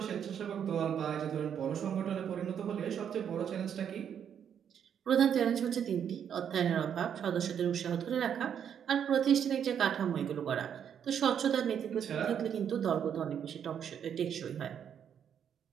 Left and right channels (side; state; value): left; quieter; 8.5 dB